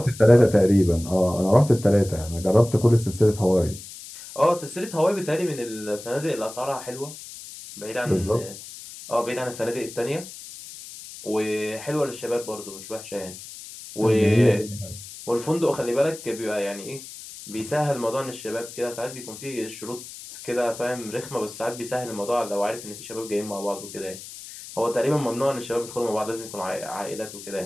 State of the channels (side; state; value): left; noise; hiss, 14 dB below the sound